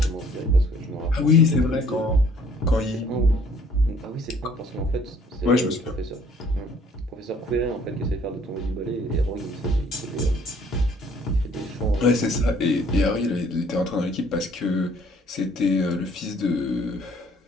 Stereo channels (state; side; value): normal; both; correlation 0.59